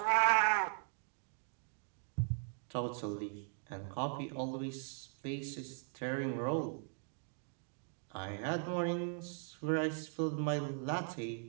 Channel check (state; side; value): silent; left; 52 dB below the other